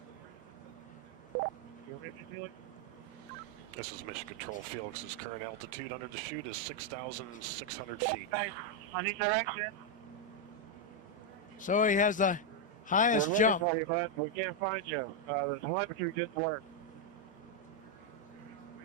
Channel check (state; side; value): normal; both; correlation 0.01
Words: You ready, Felix? This is Mission Control. Felix's current altitude under the chute is 6,600 feet. Hey, I need direction. So he has the highest We're looking jump. for you, bud. We can't find you. The telemetry didn't work.